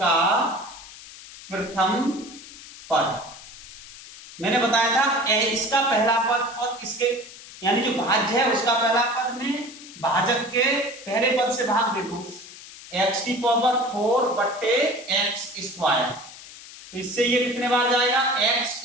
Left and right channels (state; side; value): noise; left; hiss, 17 dB below the sound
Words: प्रथम पद मैंने बताया था इसका पहला पद और इसके यानी जो भाज्य है उसका पहला पद में भाजक के पहले पद से भाग दे दो, एक्स की पावर 4 बट्टे एक्स स्क्वायर, तो इससे ये कितने बार जाएगा, एक्स